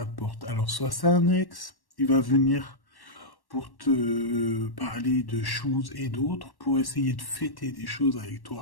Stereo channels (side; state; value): right; late; 1.1 ms